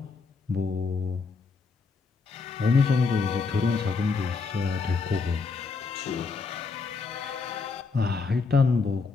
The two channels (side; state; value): right; quieter; 4.6 dB